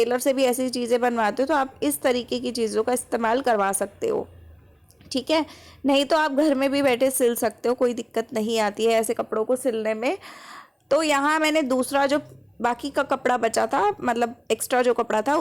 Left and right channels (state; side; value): identical; both; correlation 1.00